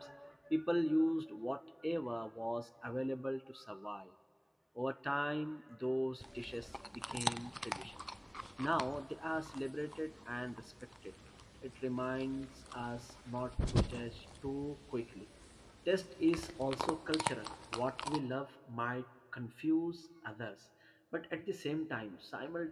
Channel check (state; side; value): identical; both; correlation 1.00